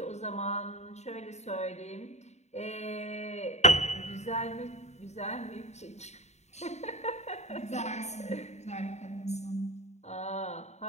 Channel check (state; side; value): late; right; 0.32 ms